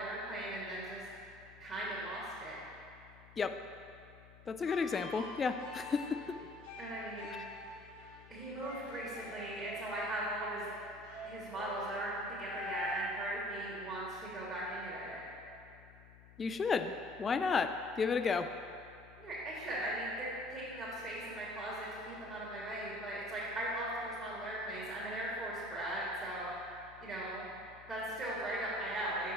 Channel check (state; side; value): noise; left; hum, 20 dB below the sound